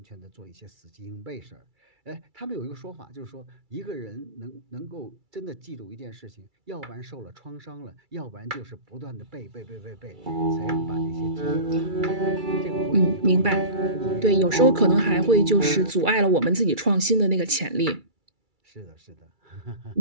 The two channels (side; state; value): left; late; 2.3 ms